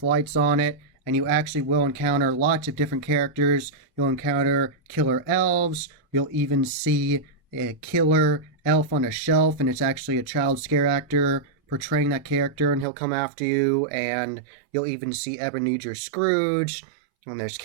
lights on it, and you actually will encounter lots of different characters. You'll encounter killer elves, you'll even see a killer elf on a shelf, and it's actually a child scare actor portraying that character, and he'll come after you, and you'll even see Ebenezer Scrooge, and there's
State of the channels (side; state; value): left; drops out; at 12.9 s